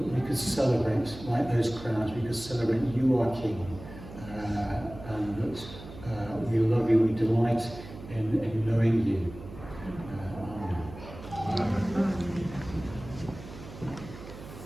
could celebrate like those crowds. We could celebrate you are King, and that we love you. We delight in knowing you.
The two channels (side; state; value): right; noise; hum, 14 dB below the sound